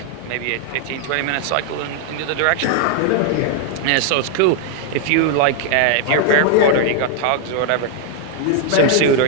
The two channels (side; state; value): both; different; correlation 0.00